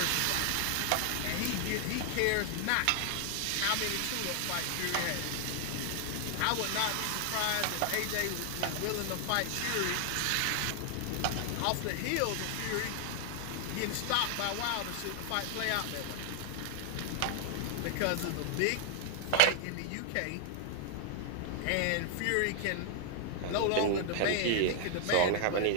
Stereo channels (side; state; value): both; different; correlation 0.00